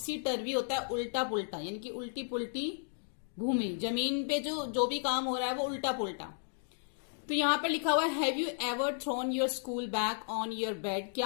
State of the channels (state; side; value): silent; right; digital silence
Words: टर्वी होता है उल्टा पुल्टा यानी कि उल्टी पुल्टी भूमि। जमीन पे जो भी काम हो रहा है वो उल्टा पुल्टा। तो यहाँ पर लिखा हुआ है, have you ever thrown your school bag on your bed?